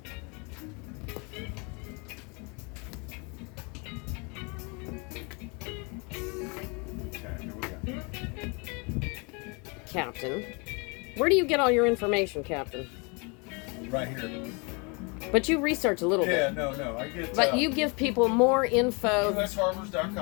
Captain. Where do you get all your information, Captain? Right here. But you research a little Yeah, bit. no. I get. But you give people more info.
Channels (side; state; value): right; quieter; 31.3 dB